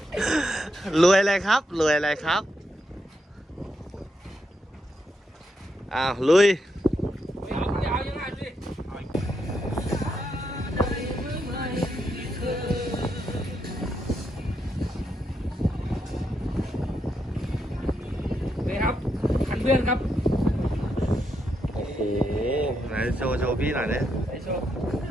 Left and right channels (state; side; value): normal; both; correlation 0.81